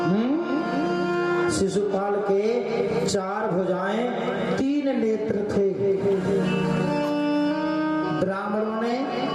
शिशुपाल के 4 भुजाएं 3 नेत्र थे। ब्राह्मणों ने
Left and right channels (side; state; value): both; identical; correlation 1.00